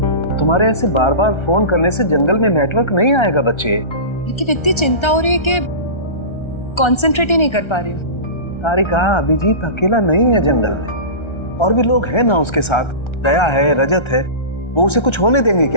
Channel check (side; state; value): right; late; 1.3 ms